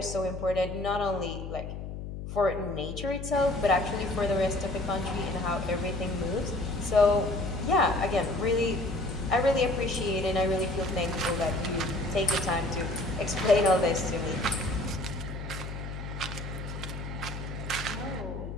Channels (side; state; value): left; noise; hum, 7 dB below the sound